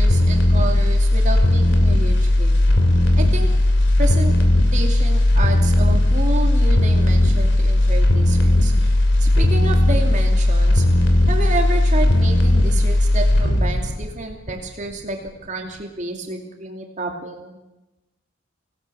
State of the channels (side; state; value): both; normal; correlation 0.93